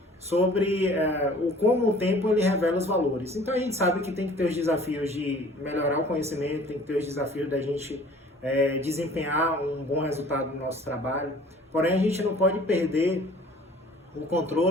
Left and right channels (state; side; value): normal; both; correlation 0.50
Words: sobre como o tempo ele revela os valores. Então a gente sabe que tem que ter os desafios de melhorar o conhecimento, tem que ter os desafios da gente desempenhar um bom resultado no nosso trabalho, porém a gente não pode perder o